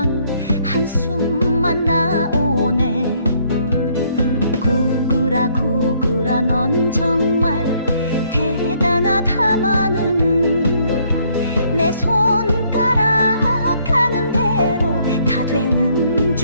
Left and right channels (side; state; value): both; inverted; correlation -0.67